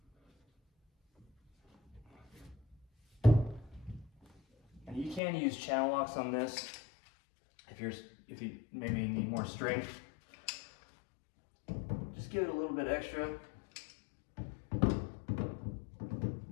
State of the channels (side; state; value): right; drops out; at 5.2 s